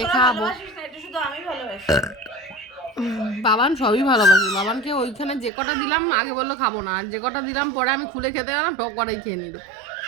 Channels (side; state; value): left; drops out; at 5.5 s